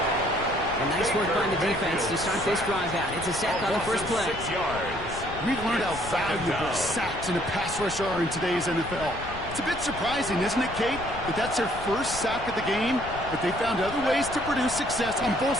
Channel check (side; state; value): left; noise; rumble, 12 dB below the sound